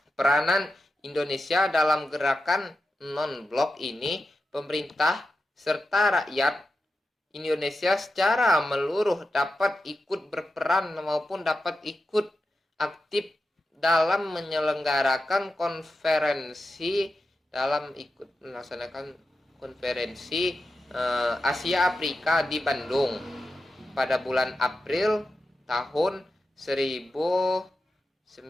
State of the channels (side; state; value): both; normal; correlation 0.90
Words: peranan Indonesia dalam gerakan non-blok ini, pemerintah serta rakyat Indonesia secara menyeluruh dapat ikut berperan maupun dapat ikut aktif dalam menyelenggarakan melaksanakan konferensi Asia Afrika di Bandung pada bulan April tahun 1955.